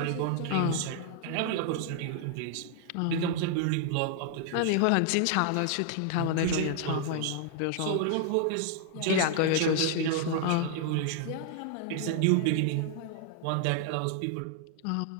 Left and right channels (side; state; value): both; different; correlation 0.00